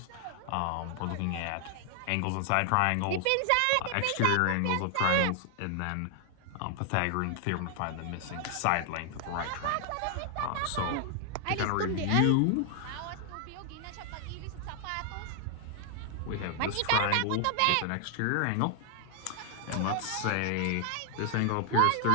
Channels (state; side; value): different; both; correlation 0.00